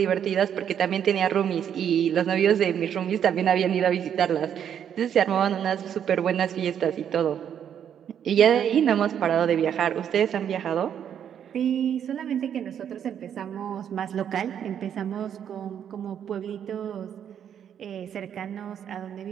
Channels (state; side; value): quieter; left; 8.9 dB